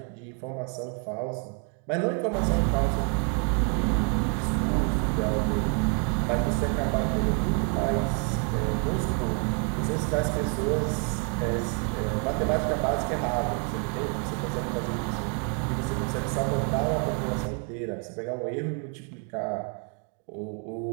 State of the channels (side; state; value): left; quieter; 36.4 dB